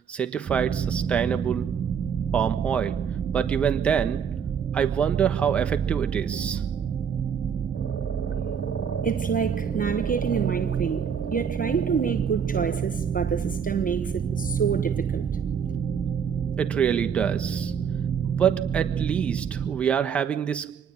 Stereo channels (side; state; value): left; quieter; 7.3 dB